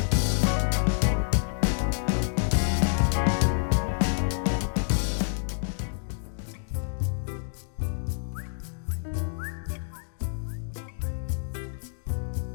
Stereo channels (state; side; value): silent; right; digital silence